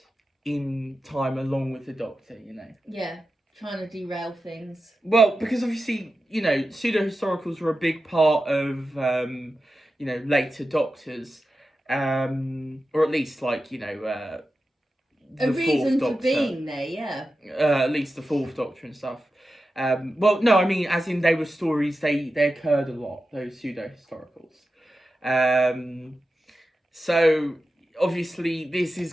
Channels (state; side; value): normal; both; correlation 0.92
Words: in time along with the Doctor, you know. Yeah, trying to derail things. Well, because obviously, you know, pseudo-historicals were a big part of, you know, later Doctors. Or at least, like, you know, a reason Fourth for Doctor. being there, yeah. At least the Fourth Doctor and stuff. Well, no, I mean, as in they were stories, they occurred a lot, those pseudo-historicals. So obviously this is